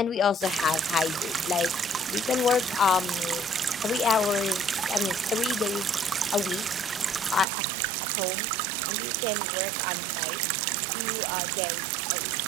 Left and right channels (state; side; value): drops out; left; at 7.5 s